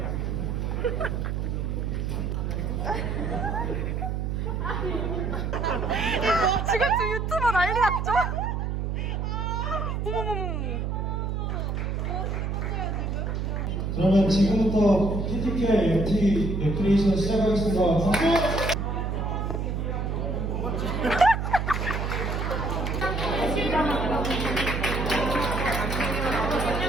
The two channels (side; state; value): right; noise; hum, 1 dB below the sound